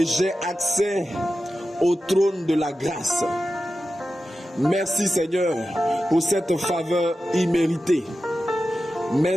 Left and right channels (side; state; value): both; normal; correlation 0.92